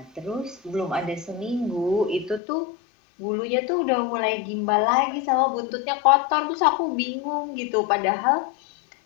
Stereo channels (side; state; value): right; drops out; at 2.4 s